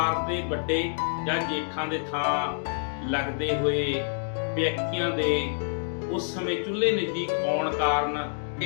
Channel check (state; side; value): silent; right; digital silence